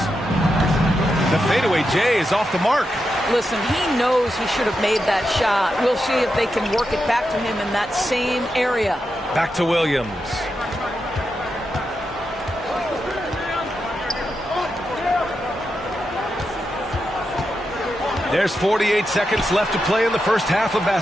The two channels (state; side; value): normal; both; correlation 0.87